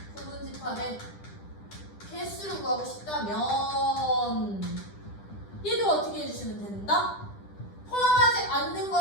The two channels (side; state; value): right; late; 10 ms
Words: 부분집합의 개수를 구하고 싶다면 얘도 어떻게 해주시면 된다? 포함하지 않는